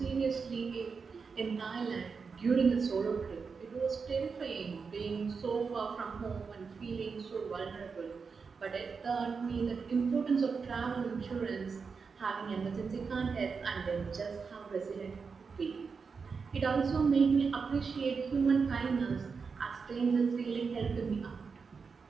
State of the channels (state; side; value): quieter; left; 5.3 dB